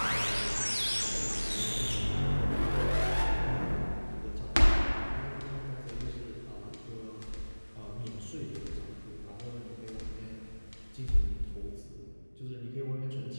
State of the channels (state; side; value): inverted; both; correlation -1.00